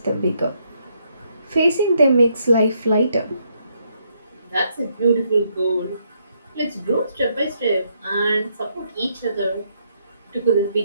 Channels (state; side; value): inverted; both; correlation -0.75